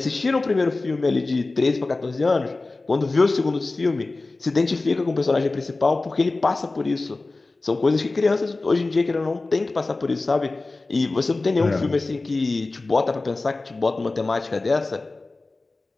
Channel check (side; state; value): right; quieter; 3.3 dB